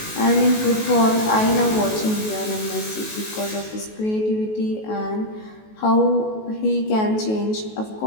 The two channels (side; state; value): right; late; 19 ms